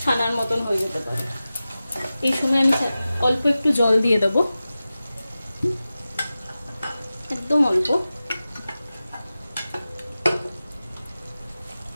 ছানার মতন হয়ে যেতে পারে। এই সময় আমি অল্প একটু জল দিয়ে দেবো, একদম অল্প।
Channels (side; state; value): both; inverted; correlation -0.95